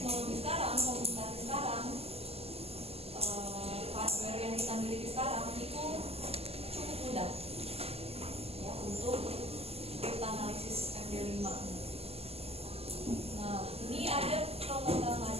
sekarang, komunikasi sekarang, hardware yang kita miliki sekarang itu cukup mudah ya untuk cryptanalysis MD5. Nah, ini ada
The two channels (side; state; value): left; late; 0.29 ms